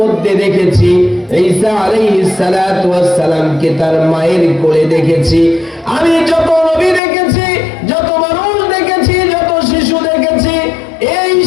দেখেছি, ঈসা আলাইহিস সালাতু ওয়াস সালামকে তার মায়ের কোলে দেখেছি। আমি যত নবী দেখেছি, যত মানুষ দেখেছি, যত শিশু দেখেছি, এই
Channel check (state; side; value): drops out; right; at 7.0 s